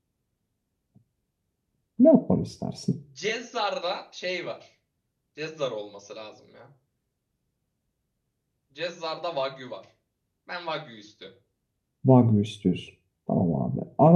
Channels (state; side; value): identical; both; correlation 1.00